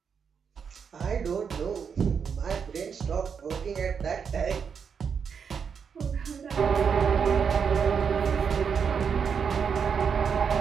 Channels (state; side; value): quieter; left; 6.6 dB